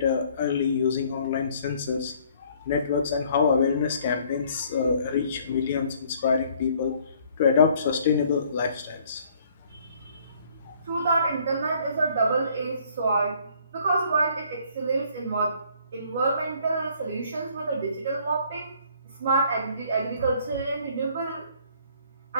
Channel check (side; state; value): both; inverted; correlation -0.61